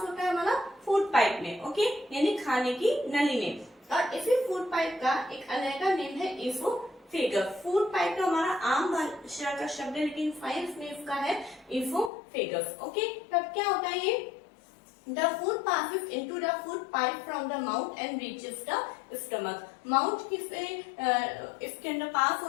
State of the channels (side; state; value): right; drops out; at 12.1 s